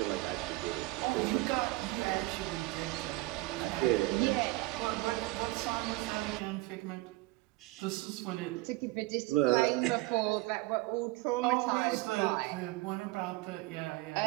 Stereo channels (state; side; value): quieter; left; 20.6 dB